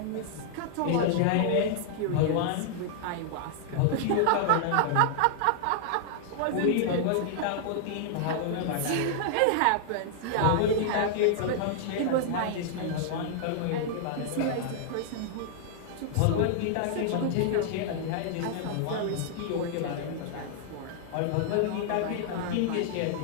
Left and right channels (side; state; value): both; different; correlation -0.01